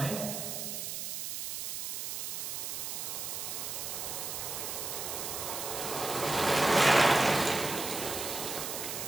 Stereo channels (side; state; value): right; noise; hiss, 4 dB below the sound